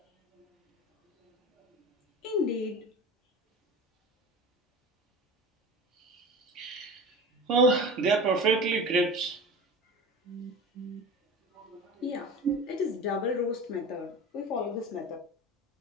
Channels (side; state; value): both; normal; correlation 0.33